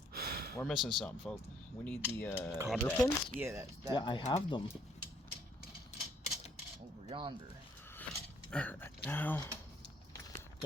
We're missing something, folks. We need the Cotter that- pins? Yeah, that Yeah, I have them. over yonder. Alright, now.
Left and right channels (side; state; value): both; normal; correlation 0.66